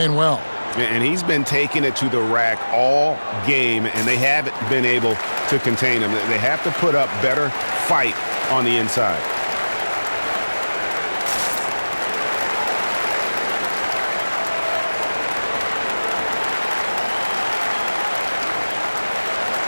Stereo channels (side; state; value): both; inverted; correlation -1.00